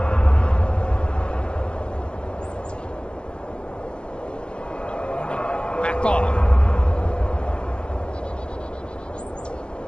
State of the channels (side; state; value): right; late; 0.055 ms